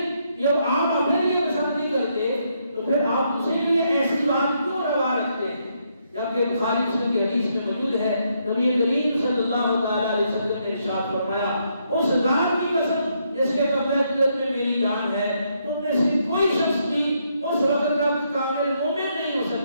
جب آپ اپنے لیے پسند نہیں کرتے تو پھر آپ دوسرے کے لیے ایسی بات کیوں روا رکھتے ہیں؟ جبکہ بخاری مسلم کی حدیث میں موجود ہے نبی کریم صلی اللہ تعالی علیہ وسلم نے ارشاد فرمایا اس ذات کی قسم جس کے قبضہ قدرت میں میری جان ہے، تم میں سے کوئی شخص بھی اس وقت تک کامل مومن نہیں ہو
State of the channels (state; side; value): inverted; both; correlation -0.76